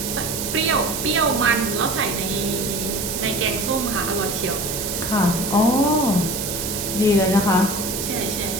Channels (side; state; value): right; noise; hiss, 4 dB below the sound